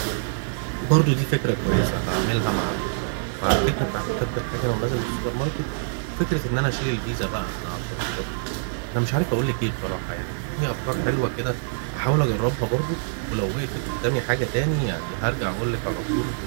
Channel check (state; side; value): silent; left; 62 dB below the other